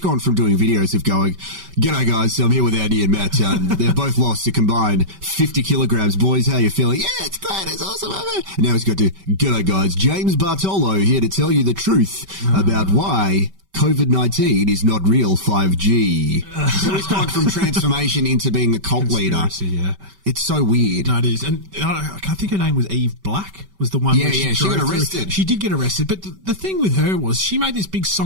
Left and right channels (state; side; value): late; left; 5.2 ms